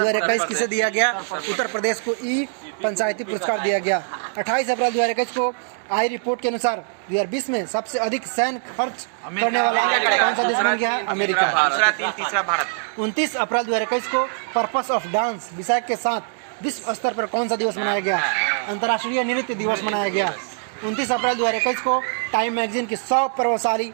किसे दिया गया? उत्तर प्रदेश को ई पंचायती पुरस्कार दिया गया। 28 अप्रैल 2021 को आई रिपोर्ट के अनुसार 2020 में सबसे अधिक सैन्य खर्च करने वाला कौन सा देश बन गया है? अमेरिका। तीसरा भारत। 29 अप्रैल 2021 को पर्पस ऑफ डांस विषय के साथ विश्व स्तर पर कौन सा दिवस मनाया गया? अंतर्राष्ट्रीय नृत्य दिवस मनाया गया। 29 अप्रैल 2021 को टाइम मैगजीन की 100 प्रभावशाली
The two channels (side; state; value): left; silent; digital silence